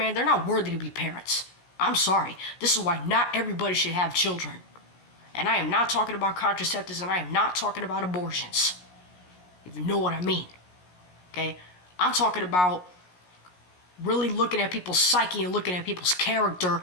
they're not worthy to be parents. I'm sorry. This is why not everybody should have children. And I am not talking about contraceptives, and I am not talking about abortions. If you know what I mean. Okay? I'm talking about really looking at people's psyche and looking at people's character,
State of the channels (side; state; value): right; late; 17 ms